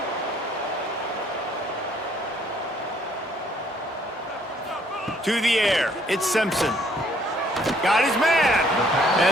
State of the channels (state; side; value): normal; both; correlation 0.64